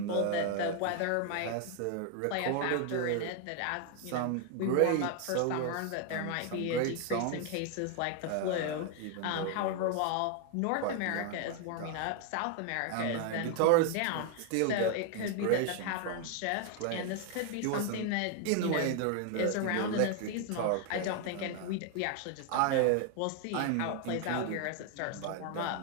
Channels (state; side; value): different; both; correlation 0.00